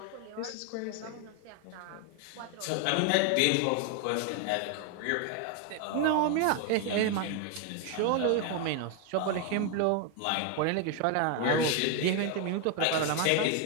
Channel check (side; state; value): both; different; correlation 0.01